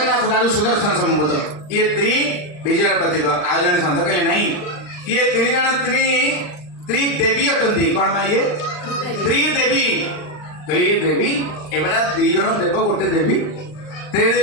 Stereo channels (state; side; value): late; right; 39 ms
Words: दारू सुदर्शन संबोध ये त्रि विजय प्रतीक आज जन संत कहले नहीं ये तीन जन त्रिदेवी अटंती कौन भाई ये त्रिदेवी कहले ये देवी एबड़ा दी जन देव गोटे देवी